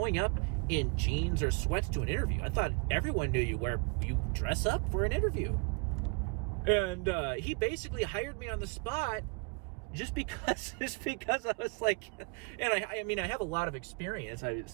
up in jeans or sweats to an interview. I thought everyone knew you dress up for an interview. And he basically hired me on the spot just because I was like, and I mean, I have a lot of experience,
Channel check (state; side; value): quieter; left; 31.8 dB